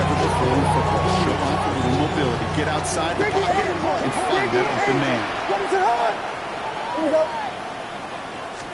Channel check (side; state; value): both; identical; correlation 1.00